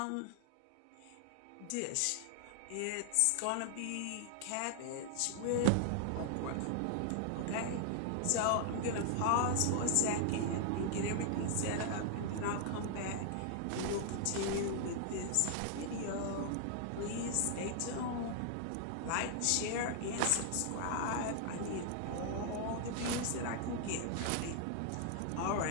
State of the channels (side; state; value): both; different; correlation 0.00